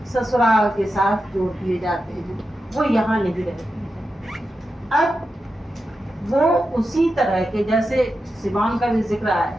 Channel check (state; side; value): normal; both; correlation 0.90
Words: ससुराल के साथ जोड़ दिए जाते हैं, वो यहाँ नहीं रहती है। अब वो उसी तरह के, जैसे सिवान का भी जिक्र आया,